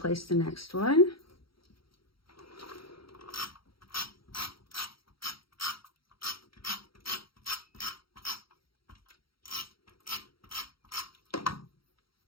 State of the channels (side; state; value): right; late; 0.75 ms